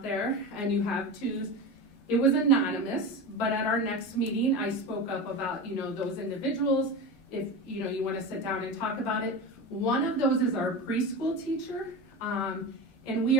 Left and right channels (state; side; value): normal; both; correlation 0.25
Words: there and you have 2s. It was anonymous, but at our next meeting, I spoke up about, those individuals. If, you want to sit down and talk about it. One of those is our preschool teacher. And we